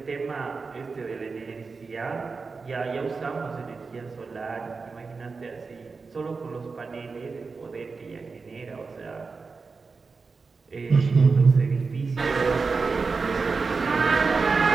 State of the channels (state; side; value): quieter; left; 4.5 dB